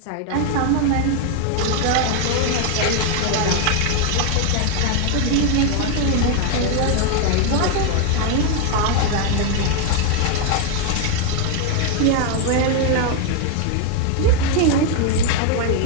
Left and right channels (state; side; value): different; both; correlation 0.01